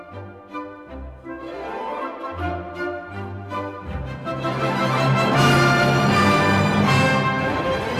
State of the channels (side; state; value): both; identical; correlation 1.00